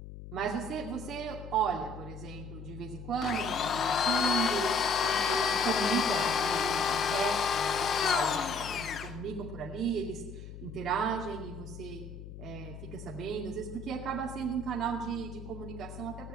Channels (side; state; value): left; noise; hum, 12 dB below the sound